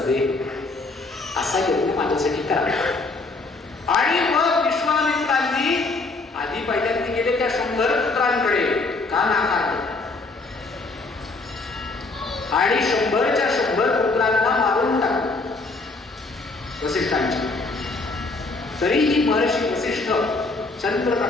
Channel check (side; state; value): right; quieter; 3.5 dB